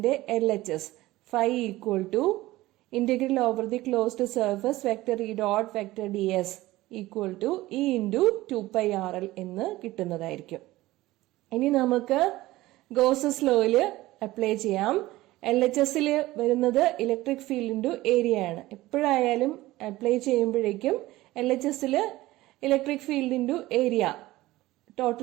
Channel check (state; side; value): quieter; left; 17.7 dB